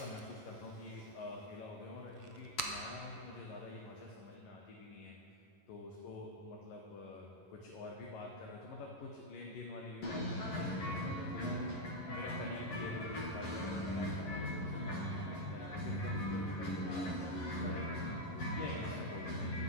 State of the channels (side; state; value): right; late; 11 ms